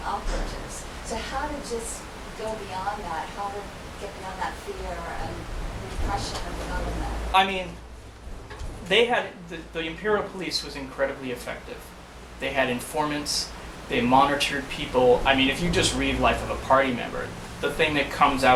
operatives. So how to just go beyond that, how to get beyond that fear and repression of the government? I mean, they had, the Imperial Police was incredibly effective. They had informants, they monitored people. I mean, if you just read Life of a Party Member, the thing that comes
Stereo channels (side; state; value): both; identical; correlation 1.00